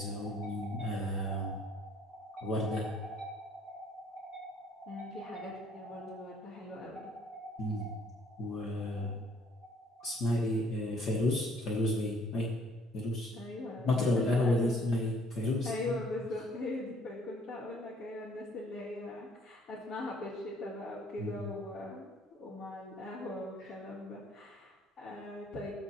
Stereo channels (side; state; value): both; normal; correlation 0.61